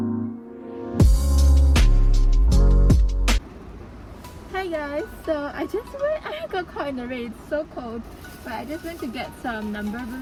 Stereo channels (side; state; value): both; identical; correlation 1.00